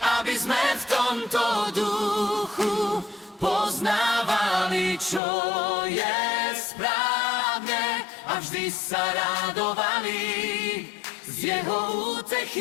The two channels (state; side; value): drops out; right; at 5.2 s